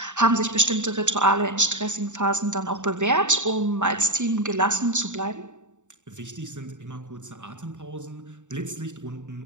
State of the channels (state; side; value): late; left; 0.85 ms